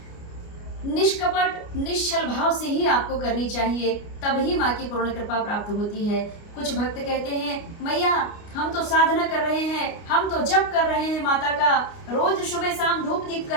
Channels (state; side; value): late; right; 29 ms